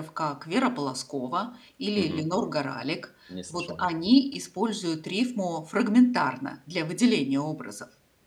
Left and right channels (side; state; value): both; identical; correlation 1.00